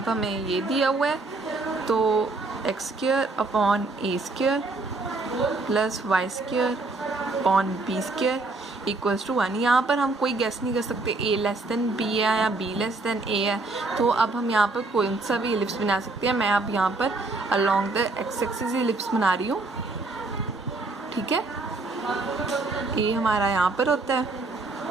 हमें ये दिया हुआ है, तो x²/a² plus y² upon b² equals to 1। यहाँ पर हम कोई गेस नहीं कर सकते a लेस देन b है या b लेस देन a है, तो अब हम यहाँ पर कोई सा भी एलिप्स बना सकते हैं। मैं अब यहाँ पर along the x axis ellipse बना रही हूँ, ठीक है। a हमारा यहाँ पर होता है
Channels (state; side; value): quieter; left; 3.4 dB